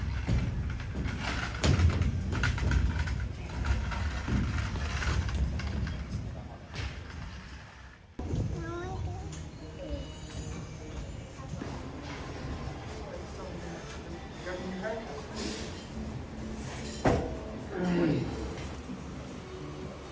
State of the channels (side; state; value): both; identical; correlation 1.00